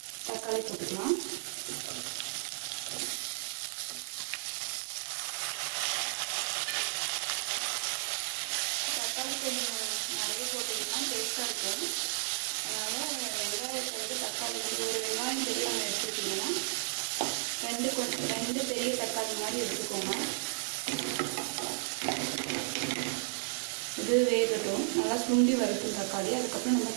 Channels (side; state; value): left; silent; digital silence